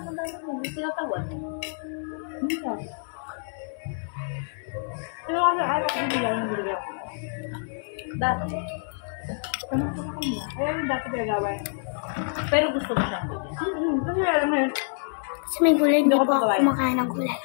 mo, tinatawad. Minsan. Pero kasi ayaw ako binigyan ng binigyan. Dati. Kamusta ka kanina? Kaya yung dapat nagawin. Pero gusto mo siyang bigyan. Kasi alam mo yun. Kasi may gulay, hindi po ako kumakain ng gulay.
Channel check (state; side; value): silent; right; 60 dB below the other